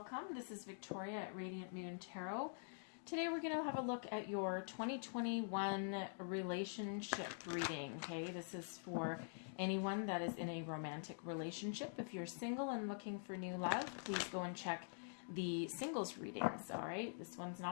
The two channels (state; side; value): silent; right; digital silence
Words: This is Victoria at Radiant Moon Tarot. Today we're going to have a look at your 2021 relationship reading. Okay, this is for anyone that is in a romantic relationship. If you're single and looking for new love, please go and check the singles readings. All right, this one's